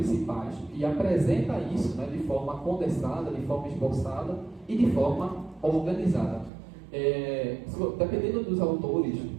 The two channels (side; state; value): left; drops out; at 6.5 s